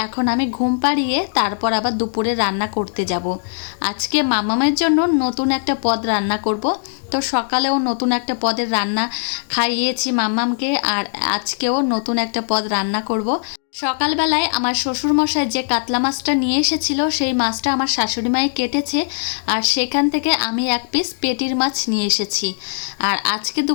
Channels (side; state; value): right; silent; digital silence